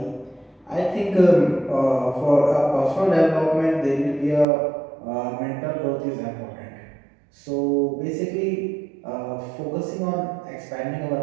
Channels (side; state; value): left; drops out; at 4.5 s